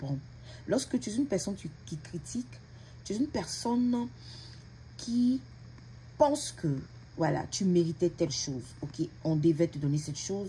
Lorsque tu es une personne qui critique, tu es une personne qui pense que voilà, tu méritais telle chose. Ok, on devait te donner cette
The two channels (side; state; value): both; identical; correlation 1.00